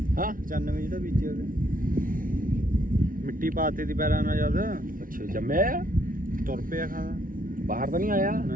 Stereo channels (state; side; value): late; left; 0.40 ms